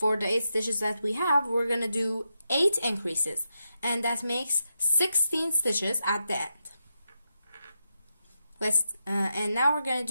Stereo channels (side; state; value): both; inverted; correlation -0.87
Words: the 8 stitches that we have, we're gonna do 8 increases, and that makes 16 stitches at the end. And now we're gonna